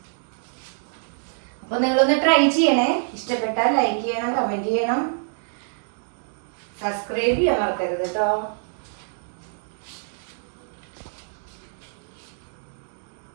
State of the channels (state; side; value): silent; left; digital silence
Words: അപ്പോൾ നിങ്ങളൊന്ന് ട്രൈ ചെയ്യണേ. ഇഷ്ടപ്പെട്ടാൽ ലൈക്ക് ചെയ്യണം, കമൻറ്റ് ചെയ്യണം, സബ്സ്ക്രൈബ് ചെയ്യാൻ മറക്കരുത് കേട്ടോ.